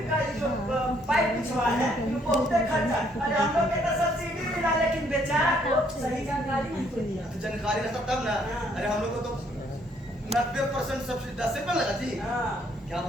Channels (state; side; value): normal; both; correlation 0.67